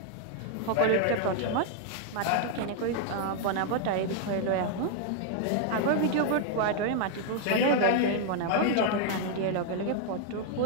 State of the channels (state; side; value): different; both; correlation 0.00